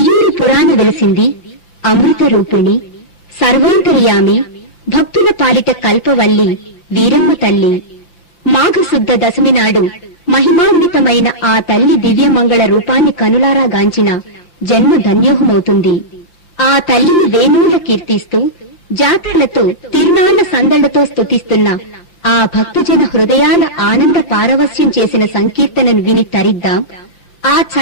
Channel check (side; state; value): right; late; 6.0 ms